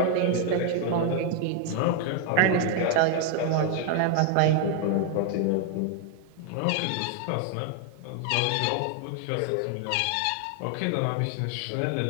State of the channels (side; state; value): both; different; correlation 0.00